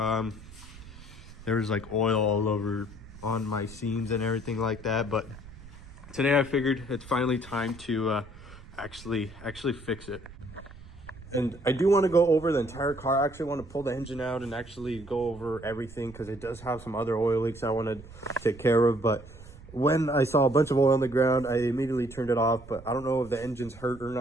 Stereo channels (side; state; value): right; noise; rumble, 18 dB below the sound